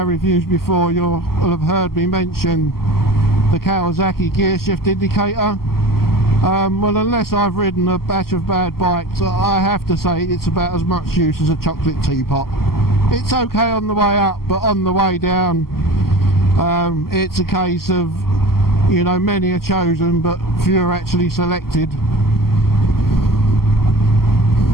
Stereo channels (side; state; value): right; late; 0.93 ms